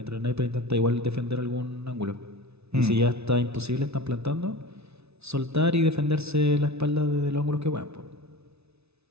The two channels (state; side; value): late; left; 0.80 ms